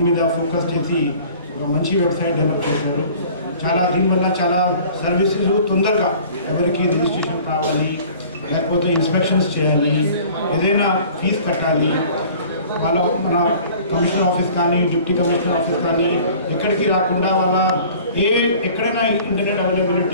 మీద ఫోకస్ చేసి ఒక మంచి వెబ్సైట్ డెవలప్ చేశారు. దీనివల్ల చాలా సర్వీసెస్ తొందరగా ఎవరికి రిజిస్ట్రేషన్ కావాలి, లేకపోతే ఇన్స్పెక్షన్స్ చేయాలి, ఏదైనా ఫీజు కట్టాలి, మన కమిషనర్ ఆఫీస్ కానీ డిప్యూటీ కమిషనర్ ఆఫీస్ కానీ ఎక్కడికి రాకుండా ఎక్కడైనా ఇంటర్నెట్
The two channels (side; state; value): both; inverted; correlation -0.47